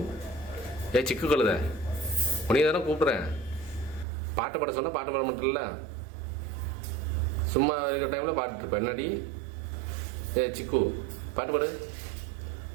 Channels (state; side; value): drops out; left; at 4.0 s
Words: சிக்கு கழுத உனைய தானே கூப்பிட்றேன். பாட்டு பாட சொன்னால் பாட்டு பாட மாட்டேல்ல. சும்மா இருக்கிற டைமில் பாட்டுருப்பேன். என்னடி சிக்கு பாட்டு பாடு.